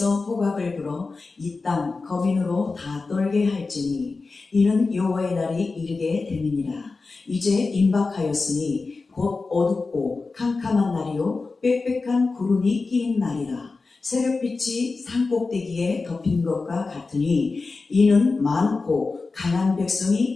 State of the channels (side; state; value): right; quieter; 4.0 dB